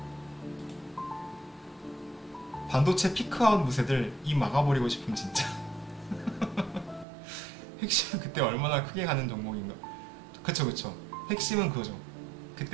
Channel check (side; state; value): left; drops out; at 7.1 s